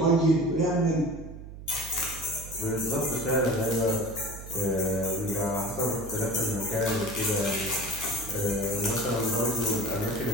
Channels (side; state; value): right; noise; hum, 13 dB below the sound